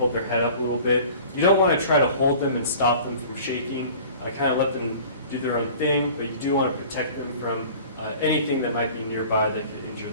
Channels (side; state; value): both; inverted; correlation -0.45